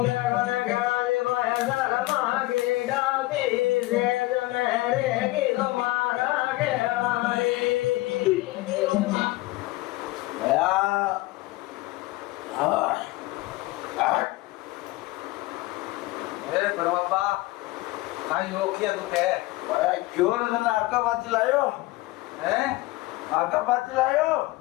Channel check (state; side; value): quieter; right; 20.2 dB